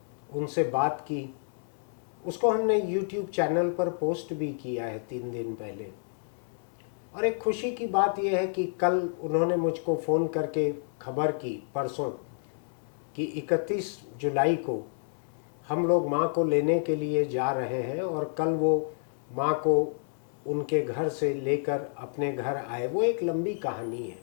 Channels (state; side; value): silent; right; digital silence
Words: उनसे बात की। उसको हमने यूट्यूब चैनल पर पोस्ट भी किया है 3 दिन पहले। और एक खुशी की बात यह है कि कल उन्होंने मुझको फ़ोन करके खबर की, परसों, कि 31 जुलाई को हम लोग माँ को लेने के लिए जा रहे हैं और कल वो माँ को उनके घर से लेकर अपने घर आए। वो एक लंबी कहानी है।